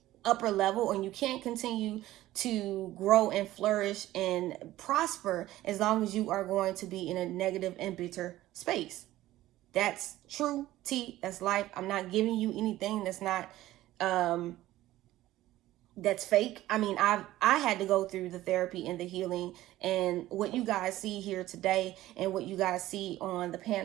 upper level, and you can't continue to grow and flourish and prosper as long as you are going to be in a negative and bitter space. That's true tea. That's life. I'm not giving you anything that's not that's fake. I mean, I had to go through the therapy and the healing, and what you guys see here today and what you guys see on the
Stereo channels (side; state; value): left; quieter; 15.5 dB